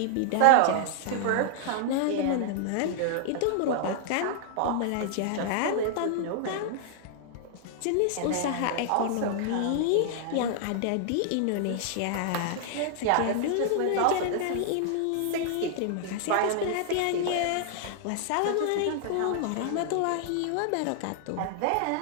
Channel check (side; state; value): both; different; correlation -0.01